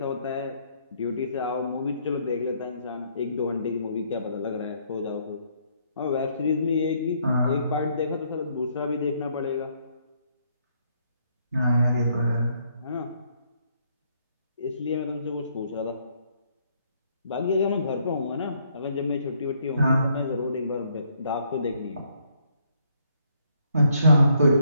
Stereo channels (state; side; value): inverted; both; correlation -0.70